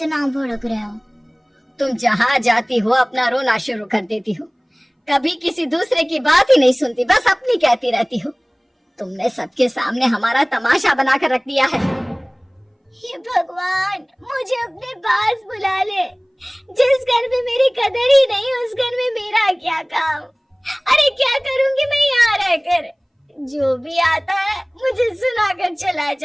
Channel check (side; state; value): both; identical; correlation 1.00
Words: भड़क रहे हो? तुम जहाँ जाती हो अपना रोना शुरू कर देती हो, कभी किसी दूसरे की बात ही नहीं सुनती, बस अपनी कहती रहती हो। तुमने सबके सामने हमारा तमाशा बनाकर रख दिया है। हे भगवान, मुझे अपने पास बुला ले। जिस घर में मेरी कदर ही नहीं, उस घर में मेरा क्या काम? अरे क्या करूंगी मैं यहाँ रहकर? जो भी आता है मुझे सुनाकर चला